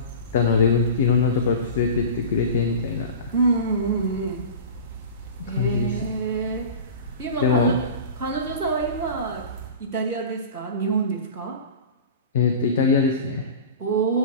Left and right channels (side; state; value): both; inverted; correlation -0.34